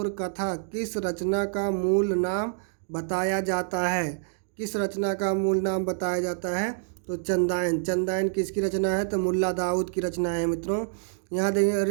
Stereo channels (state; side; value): silent; left; digital silence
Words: कथा किस रचना का मूल नाम बताया जाता है? किस रचना का मूल नाम बताया जाता है? तो चंदायन किसकी रचना है? तो मुल्ला दाऊद की रचना है मित्रों। यहाँ देखेंगे